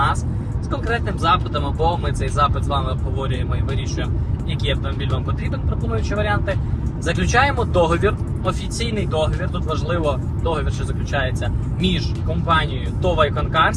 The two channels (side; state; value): both; identical; correlation 1.00